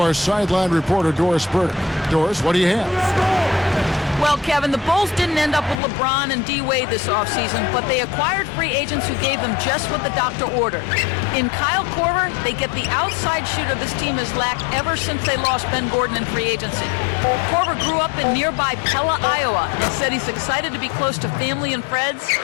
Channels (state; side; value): drops out; right; at 5.8 s